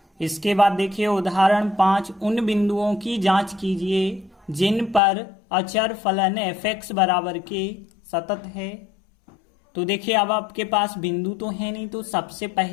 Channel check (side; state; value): right; drops out; at 5.0 s